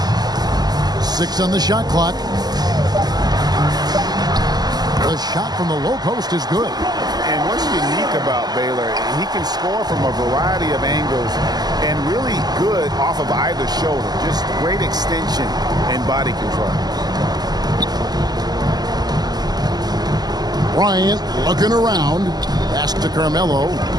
6 on the shot clock. The shot from the low post is good. And what's unique about Baylor, he can score from a variety of angles and really good off of either shoulder. Just great extension and body control. Bryant looking around. Pass to Carmelo.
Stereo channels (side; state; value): left; late; 0.20 ms